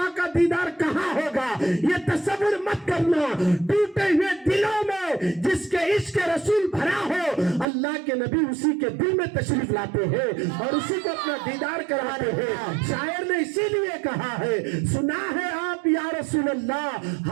का दीदार कहाँ होगा, ये तसव्वुर मत करना। टूटे हुए दिलों में जिसके इश्क रसूल भरा हो, अल्लाह के नबी उसी के दिल में तशरीफ लाते हैं और उसी को अपना दीदार कराते हैं। शायर ने इसीलिए कहा है, सुना है आप या रसूल अल्लाह,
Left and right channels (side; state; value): left; drops out; at 7.7 s